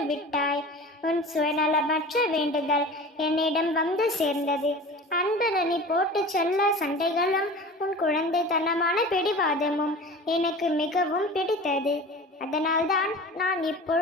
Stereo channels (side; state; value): both; normal; correlation 0.37